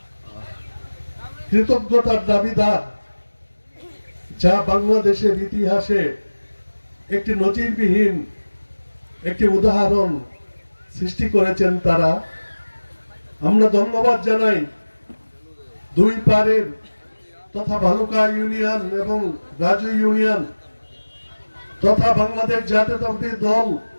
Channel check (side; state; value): both; inverted; correlation -1.00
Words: কৃতজ্ঞতার দাবিদার, যা বাংলাদেশের ইতিহাসে একটি নজিরবিহীন একটি উদাহরণ সৃষ্টি করেছেন তারা। আমরা ধন্যবাদ জানাই দুই পাড়ের তথা ভালুকা ইউনিয়ন এবং রাজু ইউনিয়ন তথা বাংলাদেশ জাতীয়তাবাদী দল